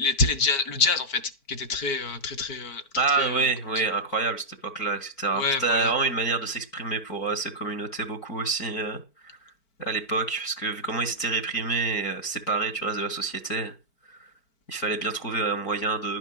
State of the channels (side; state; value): right; late; 4.5 ms